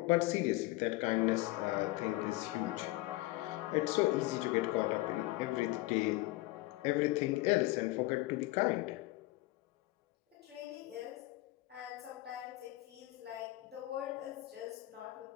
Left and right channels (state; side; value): quieter; right; 19.3 dB